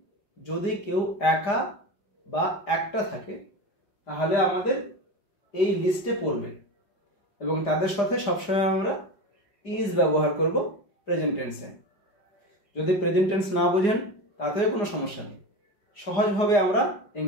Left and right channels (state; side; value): late; right; 4.9 ms